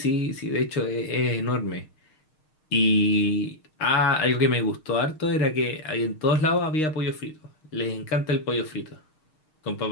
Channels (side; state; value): right; late; 6.5 ms